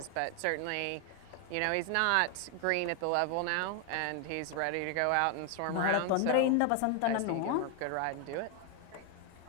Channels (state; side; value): different; both; correlation 0.01